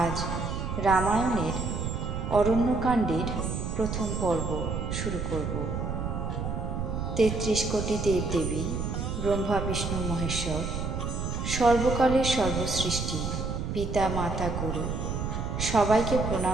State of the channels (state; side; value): noise; right; rumble, 3 dB below the sound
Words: আজ রামায়ণের অরণ্যকাণ্ডের প্রথম পর্ব শুরু করব। ৩৩ কোটি দেবদেবী, ব্রহ্মা বিষ্ণু মহেশ্বর, সর্বকালের সর্বসৃষ্টি, পিতা মাতা গুরু সবাইকে